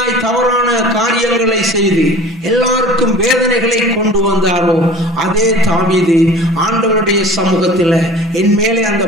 தவறான காரியங்களை செய்து எல்லாருக்கும் வேதனைகளை கொண்டு வந்தாரோ, அதே தாவீது ஆண்டவருடைய சமூகத்தில் என் மேலே அந்த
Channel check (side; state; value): both; normal; correlation 0.42